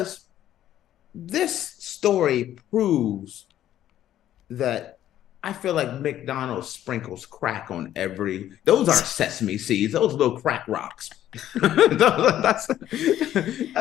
this story proves that I feel like McDonald's sprinkles crack on those aren't sesame seeds, those little crack rocks. that's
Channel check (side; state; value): right; quieter; 12.1 dB